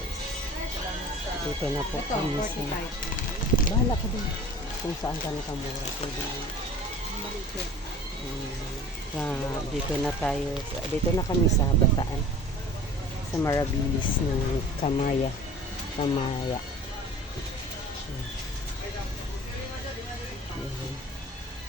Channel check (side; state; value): both; normal; correlation 0.42